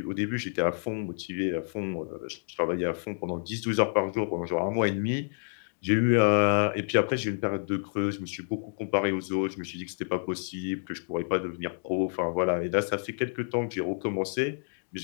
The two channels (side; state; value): right; silent; 59 dB below the other